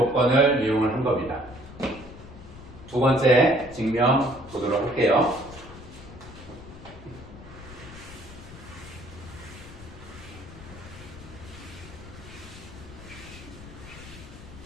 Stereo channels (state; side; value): noise; left; rumble, 16 dB below the sound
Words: 이용을 한 겁니다. 두 번째 증명 보도록 할게요.